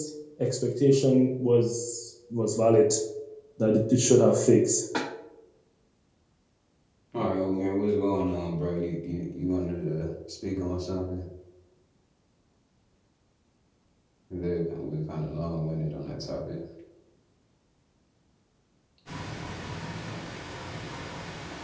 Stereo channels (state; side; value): identical; both; correlation 1.00